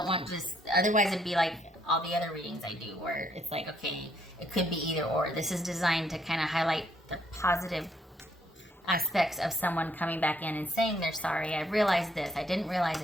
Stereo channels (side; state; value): both; normal; correlation 0.70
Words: want just, otherwise it'd be like all the other readings I do where it's like, okay, it could be either or. This is designed to kind of highlight the positive aspects of someone coming back in and saying they're sorry. I realized this. I didn't realize